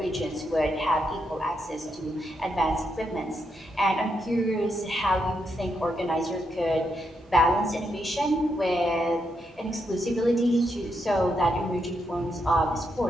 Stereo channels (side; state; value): both; normal; correlation 0.81